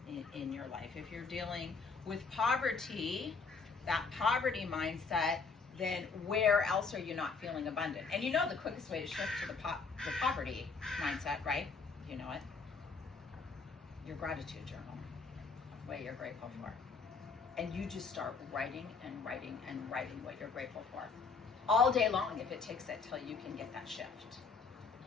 in your life? If you're dealing with poverty, that poverty mindset, then where else are you not feeling abundant? And you know the quickest way to shift to the poverty mindset, right? You know it. Your gratitude journal, what you're grateful for. And you just start writing and writing and writing what you're grateful for. All day long, if it takes it till you can get that shift.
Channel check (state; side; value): quieter; right; 4.7 dB